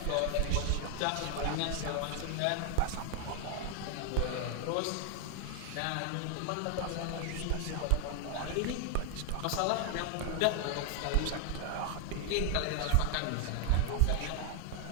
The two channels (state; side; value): different; both; correlation 0.00